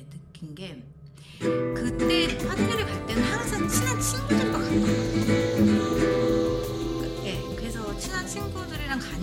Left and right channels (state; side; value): identical; both; correlation 1.00